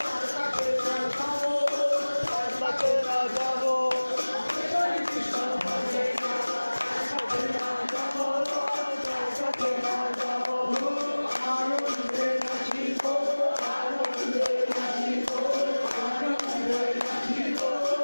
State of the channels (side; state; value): both; inverted; correlation -1.00